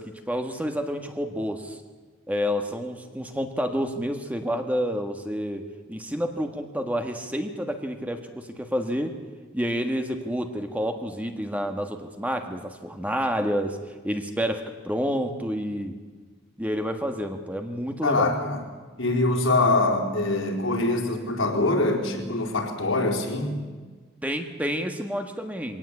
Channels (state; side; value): normal; both; correlation 0.40